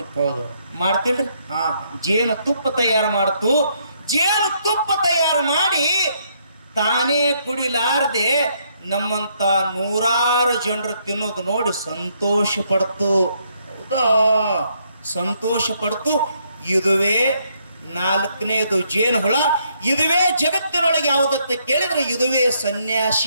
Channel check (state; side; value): inverted; both; correlation -0.72